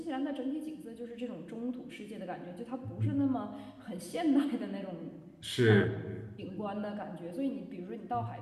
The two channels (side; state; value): both; identical; correlation 1.00